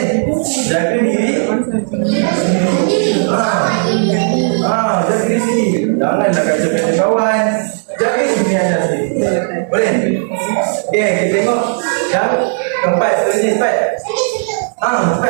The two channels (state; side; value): silent; left; 68 dB below the other